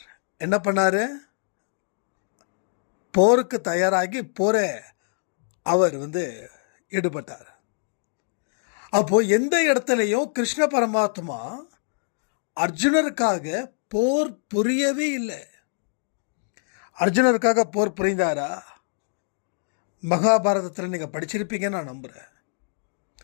என்ன பண்ணாரு? போருக்கு தயாராகி அவர் ஈடுபட்டார். அப்போ எந்த இடத்துலையும் கிருஷ்ண பரமாத்மா அர்ஜுனருக்காக போர் புரியவே இல்லை. அர்ஜுனருக்காக போர் புரிந்தாரா? மகாபாரதத்தில் நீங்கள் படிச்சிருப்பீங்கன்னு நான் நம்புகிறேன்.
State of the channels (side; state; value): right; silent; digital silence